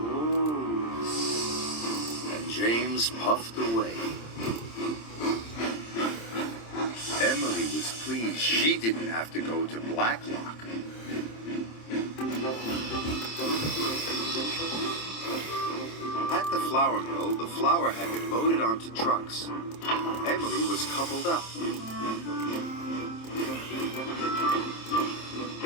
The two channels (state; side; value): late; right; 26 ms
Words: And James puffed away. Emily was pleased she didn't have to go to Black Loch. At the flour mill, the flour had been loaded onto trucks. Emily was coupled up.